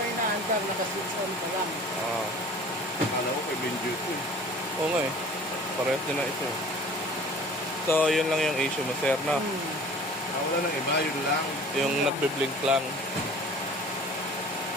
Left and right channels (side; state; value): both; normal; correlation 0.46